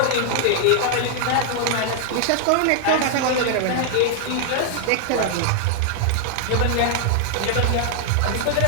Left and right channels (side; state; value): both; different; correlation 0.00